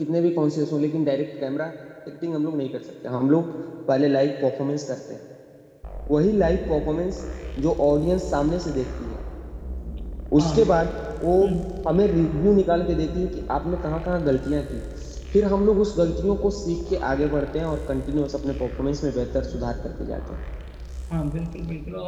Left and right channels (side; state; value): both; identical; correlation 1.00